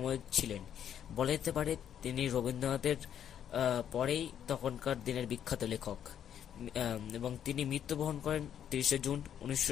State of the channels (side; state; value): right; quieter; 9.5 dB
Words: ছিলেন, বলা যেতে পারে তিনি রবীন্দ্রনাথের পরেই তখনকার দিনের বিখ্যাত লেখক। এবং তিনি মৃত্যুবরণ করেন 30শে জুন